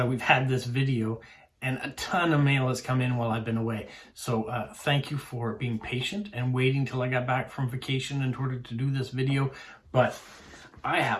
we've had this video, and a ton of mail has come in while I've been away. So thank you for being patient and waiting till I got back from vacation in order to do this video. But I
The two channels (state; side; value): identical; both; correlation 1.00